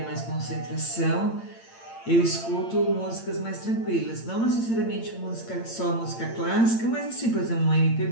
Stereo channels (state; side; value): late; right; 8.8 ms